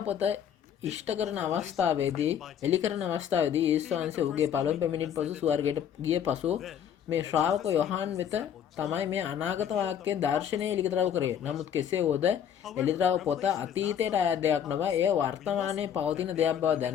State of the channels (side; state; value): right; quieter; 8.9 dB